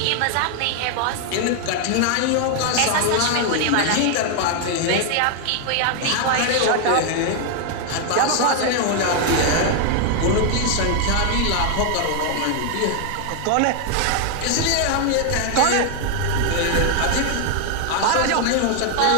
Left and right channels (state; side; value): different; both; correlation 0.00